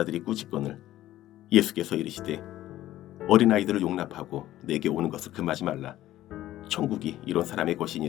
꾸짖거늘 예수께서 이르시되 어린아이들을 용납하고 내게 오는 것을 금하지 말라. 천국이 이런 사람의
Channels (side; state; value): right; quieter; 14.2 dB